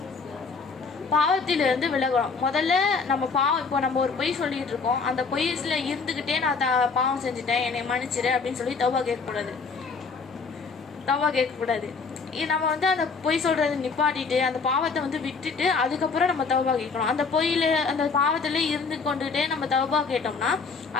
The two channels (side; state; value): right; quieter; 4.8 dB